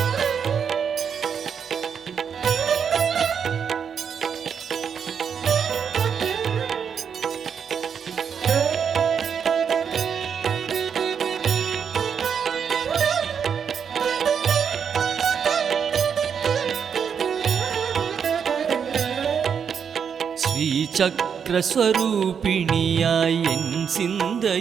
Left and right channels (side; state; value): left; quieter; 7.2 dB